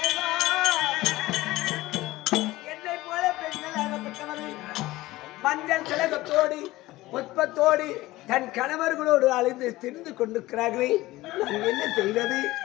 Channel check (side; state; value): right; quieter; 18.1 dB